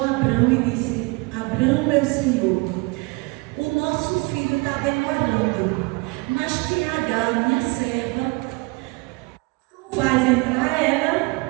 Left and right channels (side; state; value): left; quieter; 28.1 dB